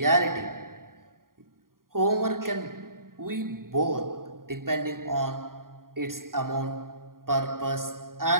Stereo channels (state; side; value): late; left; 0.91 ms